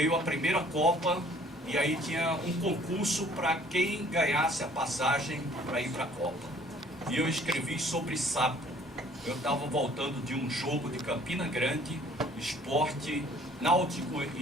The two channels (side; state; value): both; normal; correlation 0.56